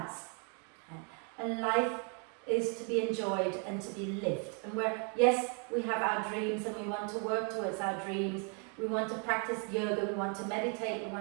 And life is to be enjoyed and to be lived. And yes, we have our dreams and we want to work towards our dreams. We want to practice yoga, we want to meditate, we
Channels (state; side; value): quieter; left; 38.1 dB